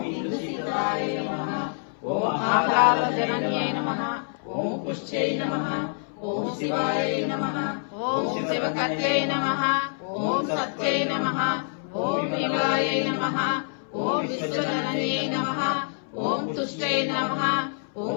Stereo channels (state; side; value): silent; right; 61 dB below the other